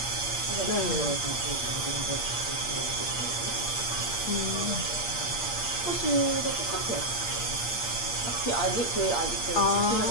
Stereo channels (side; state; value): right; late; 8.5 ms